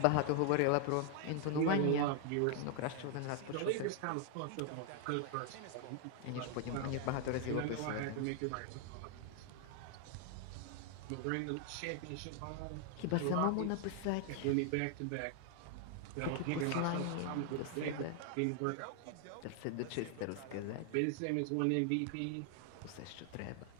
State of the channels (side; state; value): both; different; correlation 0.00